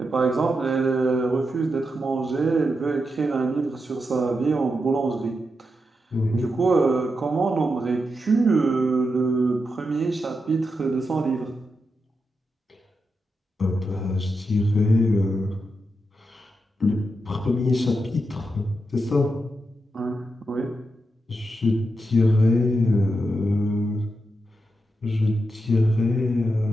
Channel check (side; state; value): both; normal; correlation 0.86